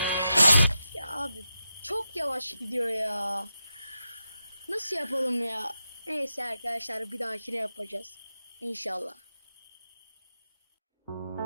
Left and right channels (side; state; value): both; inverted; correlation -0.89